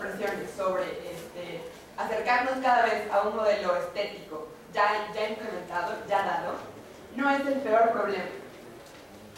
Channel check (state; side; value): identical; both; correlation 1.00